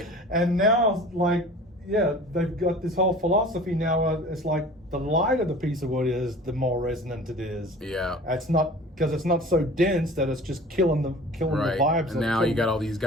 And now, like, yeah, they've got this whole philosophy now. It's like the lighter the piece of wood is, the more resonant it is. Yeah. It's not because it's not so dense that it's just killing the Right. vibes. And now you got all these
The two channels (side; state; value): both; normal; correlation 0.42